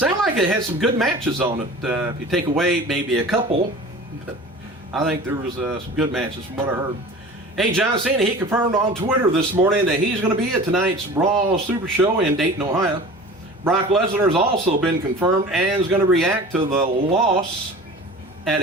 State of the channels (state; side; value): normal; both; correlation 0.39